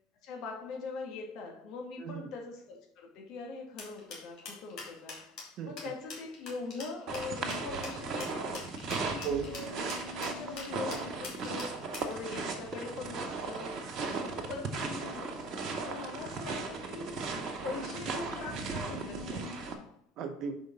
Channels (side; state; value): both; normal; correlation 0.43